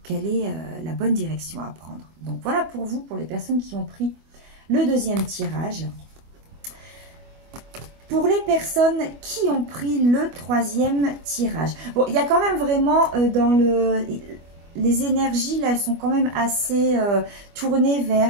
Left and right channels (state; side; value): late; left; 25 ms